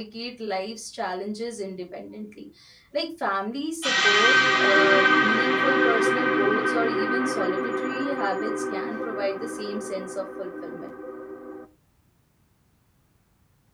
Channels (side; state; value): both; identical; correlation 1.00